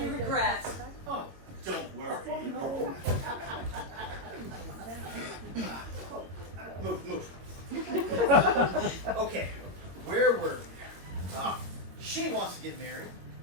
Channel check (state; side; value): late; left; 22 ms